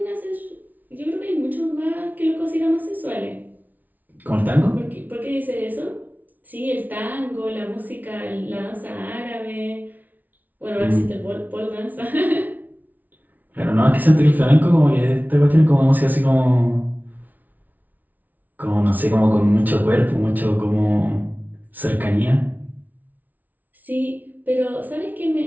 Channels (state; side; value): late; left; 0.079 ms